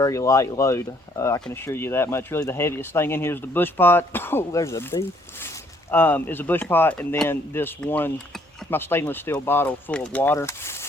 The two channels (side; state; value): both; normal; correlation 0.65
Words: light load. I can assure you that much. Really the heaviest thing in here is the bush pot. Oh, there's a bee. Is a bush pot, and then this one, my stainless steel bottle full of water.